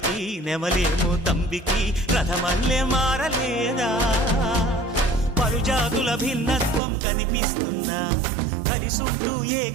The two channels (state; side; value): drops out; left; at 6.8 s